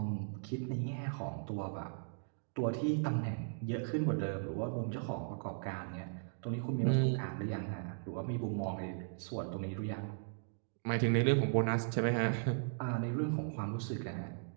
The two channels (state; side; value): silent; left; digital silence